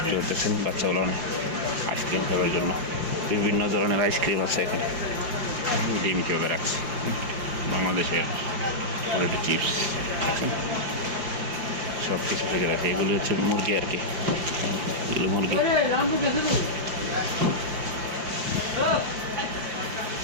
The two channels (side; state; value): left; late; 5.8 ms